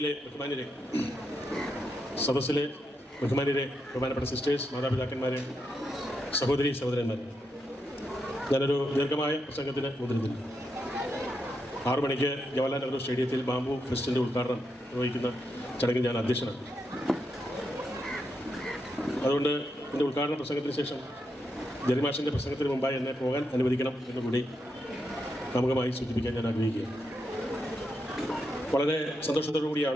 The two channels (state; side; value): normal; both; correlation 0.83